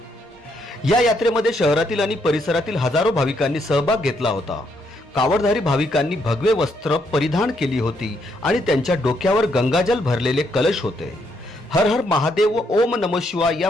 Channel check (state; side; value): normal; both; correlation 0.75